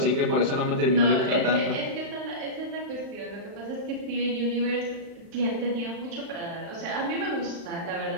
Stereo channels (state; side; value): late; left; 35 ms